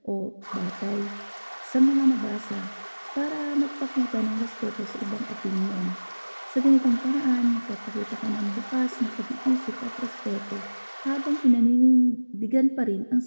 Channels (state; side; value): inverted; both; correlation -1.00